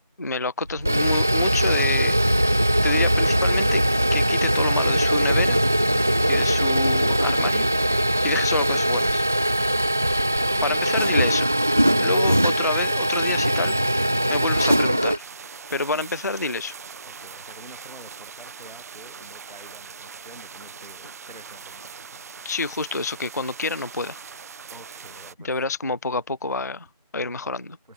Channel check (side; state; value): both; inverted; correlation -0.82